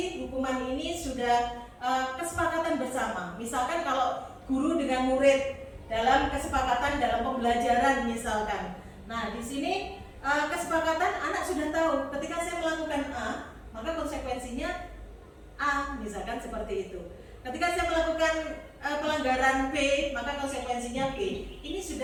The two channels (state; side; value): identical; both; correlation 1.00